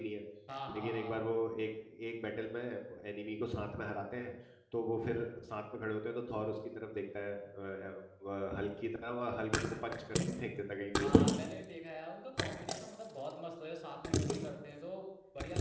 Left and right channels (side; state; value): both; identical; correlation 1.00